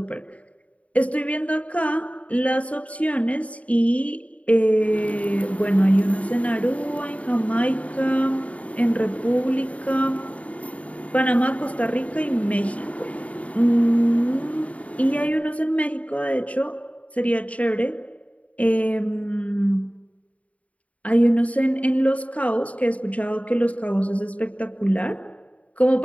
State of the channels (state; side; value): late; right; 0.067 ms